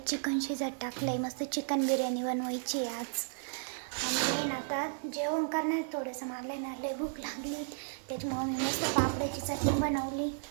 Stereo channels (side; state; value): left; silent; 55 dB below the other